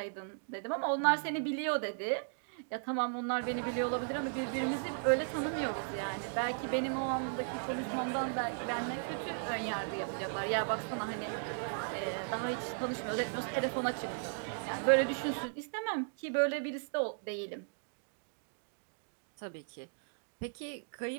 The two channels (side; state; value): left; silent; digital silence